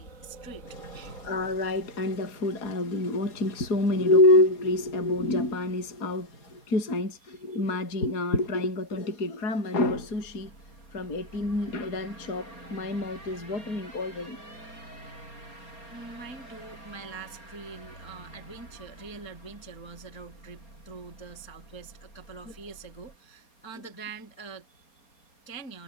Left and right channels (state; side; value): late; right; 4.3 ms